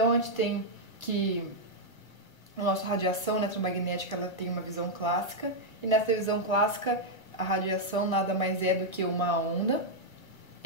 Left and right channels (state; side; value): late; right; 1.2 ms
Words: a gente tem que a nossa radiação eletromagnética ela tem uma visão clássica, e nessa visão clássica a radiação nada mais é do que uma onda,